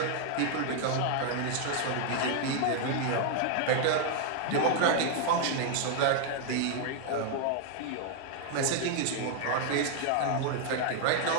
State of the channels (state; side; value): different; both; correlation 0.00